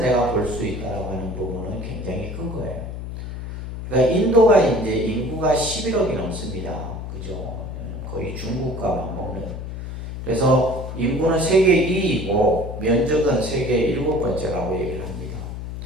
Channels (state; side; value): noise; left; hum, 8 dB below the sound